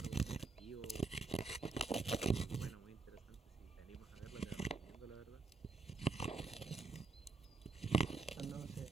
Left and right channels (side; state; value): left; quieter; 4.3 dB